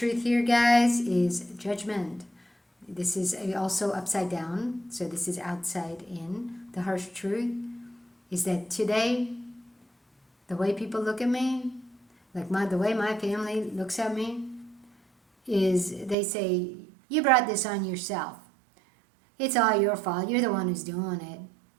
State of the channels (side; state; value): left; drops out; at 16.2 s